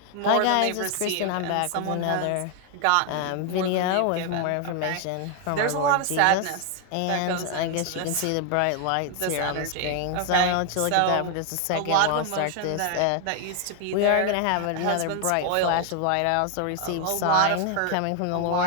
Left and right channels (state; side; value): different; both; correlation 0.00